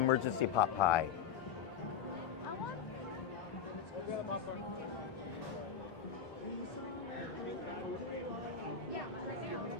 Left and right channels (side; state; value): right; quieter; 7.1 dB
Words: emergency pot pie.